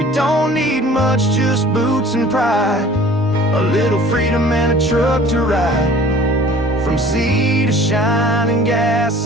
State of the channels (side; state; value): both; normal; correlation 0.49